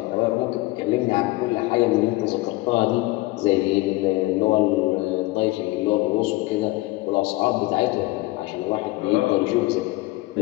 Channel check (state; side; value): quieter; right; 20.3 dB